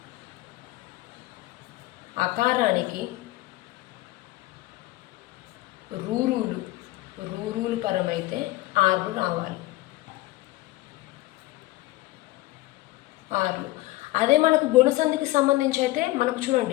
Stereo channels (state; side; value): quieter; right; 18.3 dB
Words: అకారానికి రూరులు పరమైతే ఆర్లు రావాలి. ఆర్లు. అదే మనకు గుణసంధికి సంబంధించి అయితే మనకు